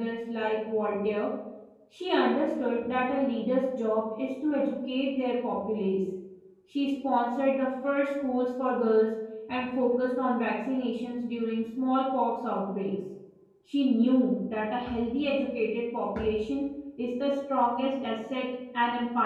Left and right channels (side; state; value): both; identical; correlation 1.00